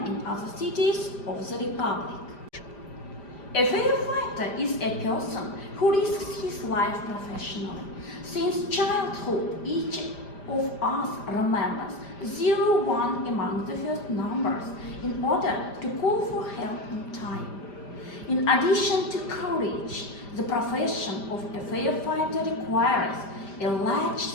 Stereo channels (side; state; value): right; late; 5.1 ms